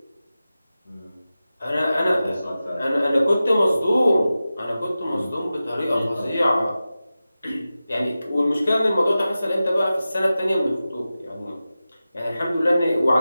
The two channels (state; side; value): inverted; both; correlation -0.94